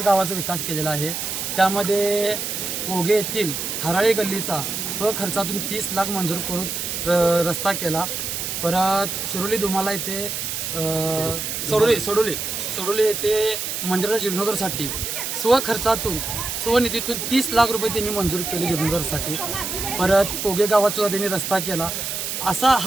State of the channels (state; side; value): noise; right; hiss, 3 dB below the sound